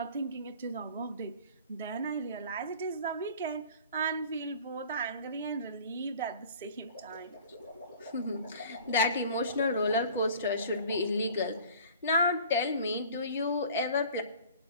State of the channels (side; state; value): both; inverted; correlation -0.46